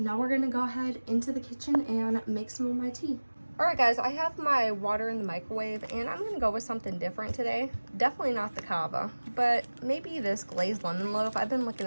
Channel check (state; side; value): inverted; both; correlation -1.00